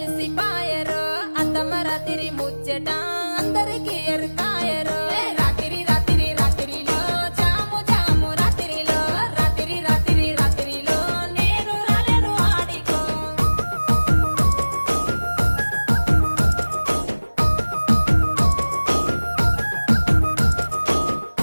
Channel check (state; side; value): inverted; both; correlation -1.00